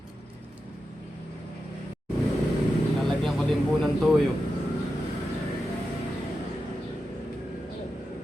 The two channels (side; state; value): both; normal; correlation 0.90